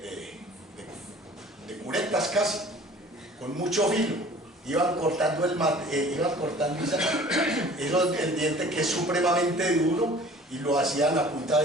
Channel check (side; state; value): both; normal; correlation 0.48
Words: curetas casi, con mucho filo. Iban cortando el diente, que es supremamente duro, y lo hacían a punta